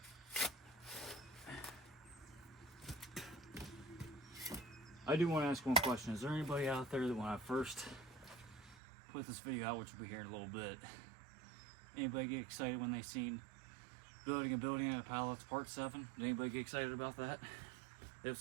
I do want to ask one question. Is there anybody out there that when I first put this video out, which will be here in a little bit, anybody get excited when they seen building a building out of pallets part 7? Did anybody get excited about that? If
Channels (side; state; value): left; drops out; at 8.8 s